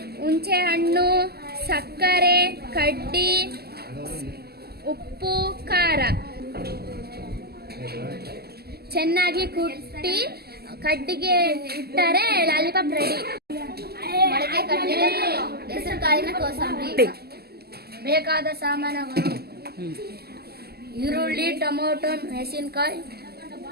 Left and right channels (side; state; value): left; late; 0.46 ms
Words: ಹುಣಸೆ ಹಣ್ಣು, ಸಕ್ಕರೆ, ಕಡ್ಡಿ, ಉಪ್ಪು, ಖಾರ ಚೆನ್ನಾಗಿ ಕುಟ್ಟಿ ಕಡ್ಡಿಗೆ ಇಟ್ಟರೆ ಲಾಲಿಪಾಪ್ ರೆಡಿ. ಮೊಳಕೆ ಕಟ್ಟಿದ ಹೆಸರು ಕಾಳಿನ ಕೋಸಂಬರಿ. ಬೇಕಾದ ಸಾಮಾನುಗಳು: ಈರುಳ್ಳಿ, ಟೊಮೊಟೊ, ಮೆಣಸಿನಕಾಯಿ,